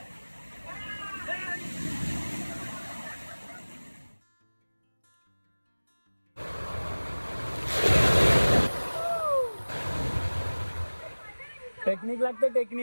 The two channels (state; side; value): inverted; both; correlation -1.00